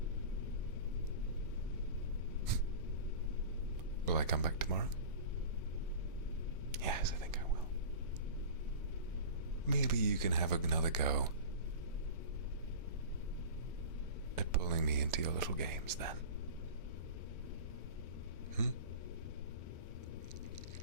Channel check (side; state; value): both; inverted; correlation -0.35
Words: Will I come back tomorrow? Yes, I think I will. Maybe you can have another go at pulling me into your little games then.